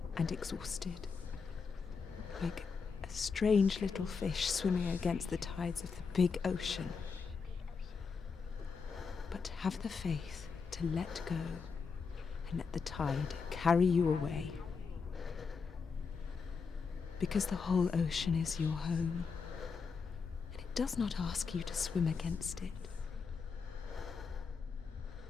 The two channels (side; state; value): right; quieter; 5.3 dB